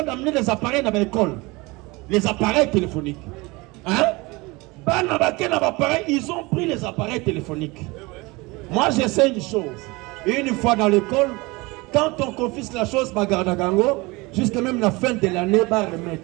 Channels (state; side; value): quieter; left; 24.0 dB